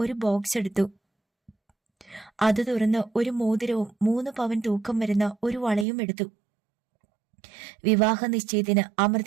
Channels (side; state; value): left; drops out; at 5.9 s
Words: ഒരു ബോക്സ് എടുത്തു. അത് തുറന്ന് ഒരു മോതിരവും 3 പവൻ തൂക്കം വരുന്ന ഒരു വളയും എടുത്തു. വിവാഹ നിശ്ചയത്തിന്